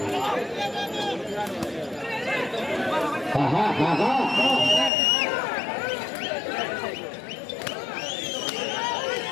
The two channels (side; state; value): right; drops out; at 4.9 s